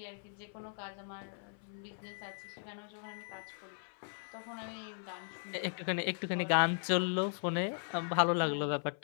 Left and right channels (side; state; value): right; silent; 53 dB below the other